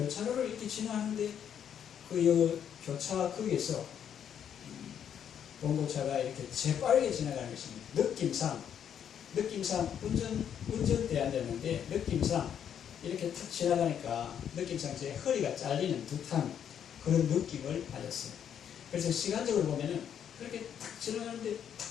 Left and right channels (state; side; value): quieter; right; 8.9 dB